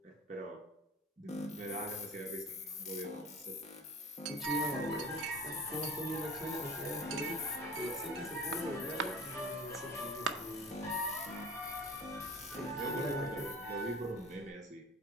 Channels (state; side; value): normal; both; correlation 0.40